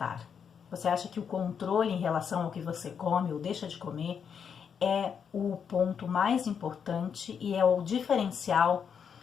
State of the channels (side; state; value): right; quieter; 7.1 dB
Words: você acha que o controle em relação ao que você come ou deixa de comer é o ponto mais importante e é o diferencial